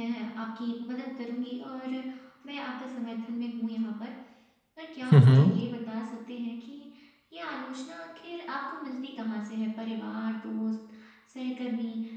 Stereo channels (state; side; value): identical; both; correlation 1.00